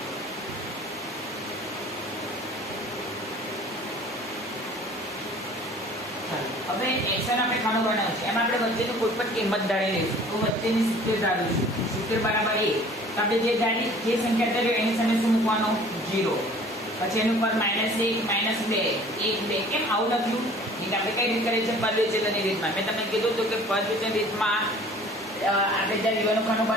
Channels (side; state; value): both; normal; correlation 0.49